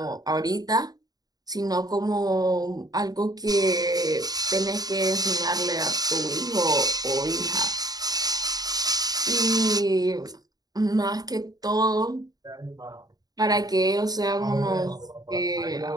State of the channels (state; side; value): late; left; 0.19 ms